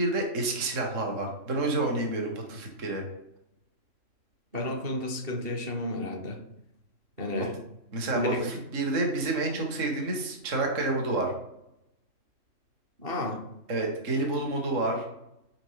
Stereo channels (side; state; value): left; late; 3.6 ms